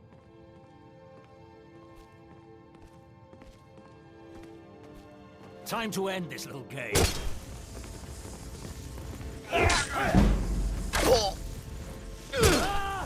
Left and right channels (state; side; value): identical; both; correlation 1.00